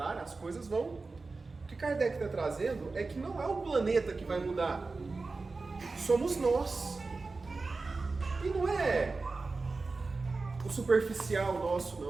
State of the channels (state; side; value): quieter; left; 3.8 dB